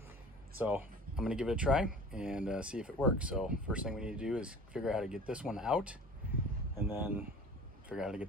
So I'm gonna give it a try and see if it works. So first thing we need to do is figure out how to get this one out and then figure out how to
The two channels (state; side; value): normal; both; correlation 0.43